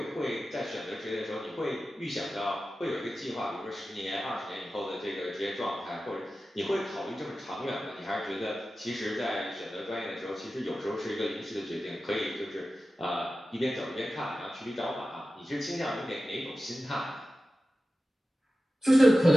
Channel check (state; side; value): normal; both; correlation 0.94